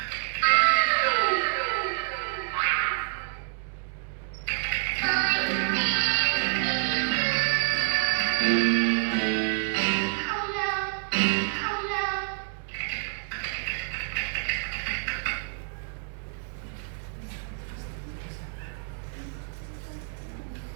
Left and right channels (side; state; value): left; silent; digital silence